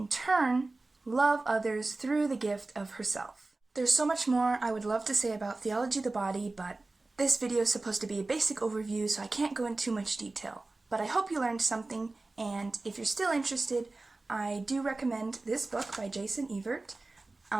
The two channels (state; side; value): quieter; left; 3.2 dB